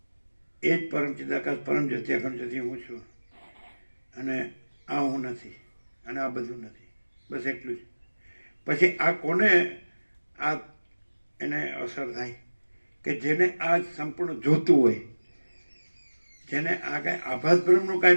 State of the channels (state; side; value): inverted; both; correlation -1.00